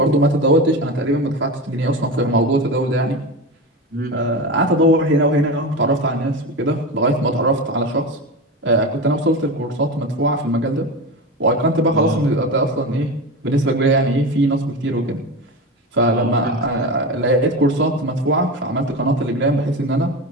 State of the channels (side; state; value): both; normal; correlation 0.23